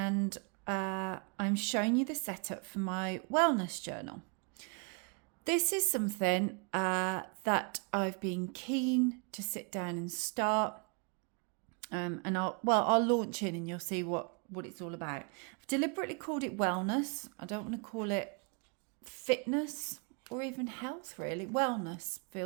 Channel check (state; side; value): quieter; left; 36.8 dB